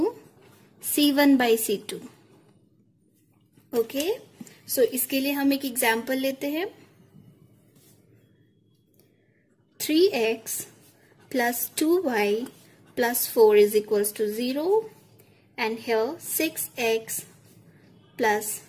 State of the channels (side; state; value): both; identical; correlation 1.00